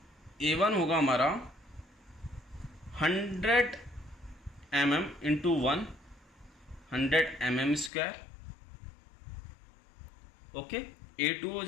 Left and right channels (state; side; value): drops out; right; at 7.9 s